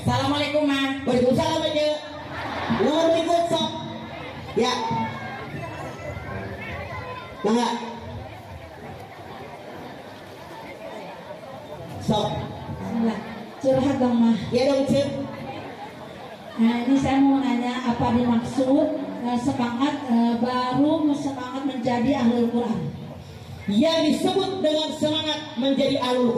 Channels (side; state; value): both; identical; correlation 1.00